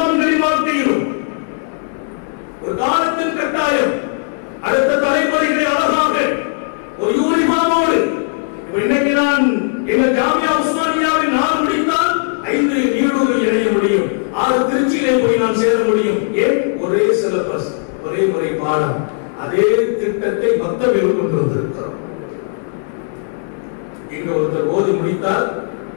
வாழ்க்கையிலும் ஒரு காலத்தின் கட்டாயம் அடுத்த தலைமுறைகளை அழகாக ஒரு யூனிஃபார்மோடு. இன்னைக்கு நான் எங்கள் ஜாமியா உஸ்மானியாவில் 4 முடித்தால் 5 நீடூரில் இணைய முடியும், 6 திருச்சியிலே போய் நான் சேர முடியும். ஏன்? ஒரே சிலபஸ், ஒரே முறை பாடம், அதே திட்டத்தை மொத்தத்தில் கொண்டு வந்திருக்கிறோம். இங்க ஒருத்தர் ஓதி முடித்தால்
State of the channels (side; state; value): right; silent; 68 dB below the other